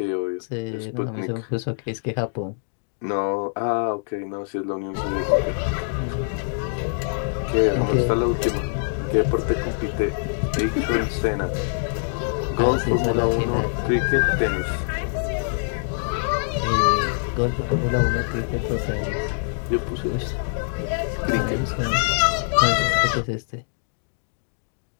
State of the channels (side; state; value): right; silent; digital silence